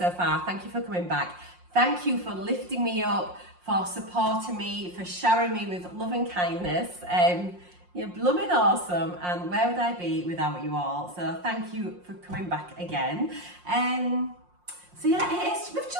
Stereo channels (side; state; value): left; late; 5.6 ms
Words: far, thank you for coming back. Thank you for lifting me up, for supporting me, for showering me with love and kindness. You're blooming awesome, and where would I be without you all? So thank you for coming back again. So yeah, we've